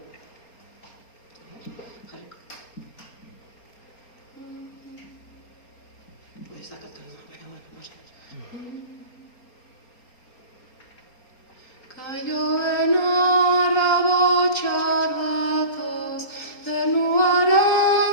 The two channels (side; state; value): right; late; 4.3 ms